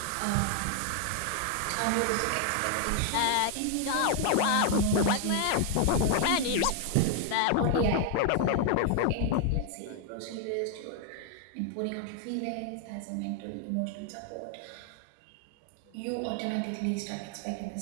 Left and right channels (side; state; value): both; different; correlation 0.00